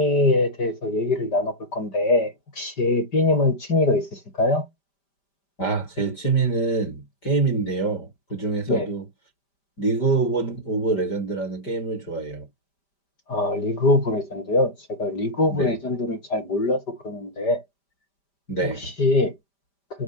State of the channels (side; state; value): right; late; 5.1 ms